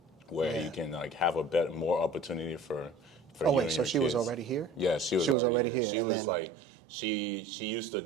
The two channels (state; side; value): drops out; left; at 5.4 s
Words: Where you can have more opportunity for oh wait, so she was already here? Yeah, she was already here. She was like, she used to